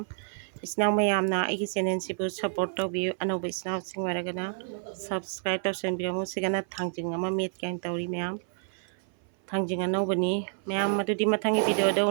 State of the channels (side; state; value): left; silent; 56 dB below the other